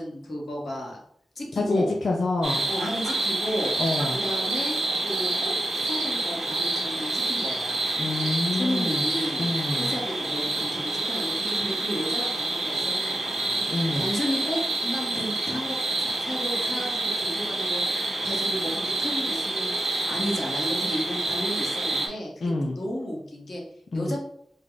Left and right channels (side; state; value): both; normal; correlation 0.87